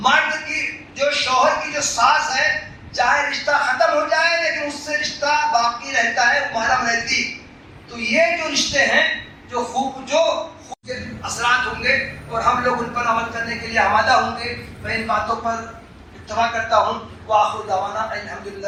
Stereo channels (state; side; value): identical; both; correlation 1.00